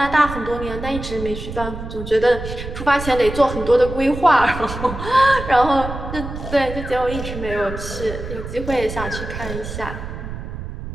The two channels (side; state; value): right; noise; rumble, 9 dB below the sound